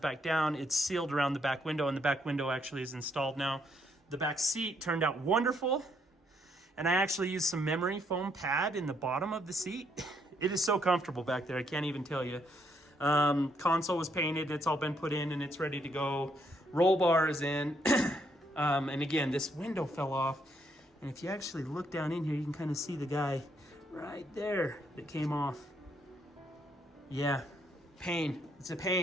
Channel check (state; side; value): normal; both; correlation 0.73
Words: down. It's sealed around the back window, and the back window actually is installed now. The back seat turned out wonderful, and I actually used some memory foam pad in the bottom of the seat. It is so comfortable back there, I can't even tell you. Console was painted, it's all been put in, and it's ready to go. Roll bar is in. And again, this window fell off. And if you actually look down in here, you can kind of see the guy right there that came off. Yeah, pain. It's a